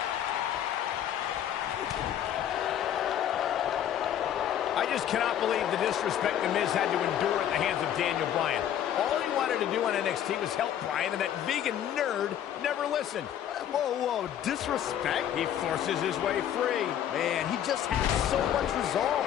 I just cannot believe the disrespect The Miz had to endure at the hands of Daniel Bryan. All he wanted to do on NXT was help Bryan, and that vegan nerd never listened. Whoa, disrespect? He forces his way free. Man, he just has so much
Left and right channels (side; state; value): right; quieter; 10.4 dB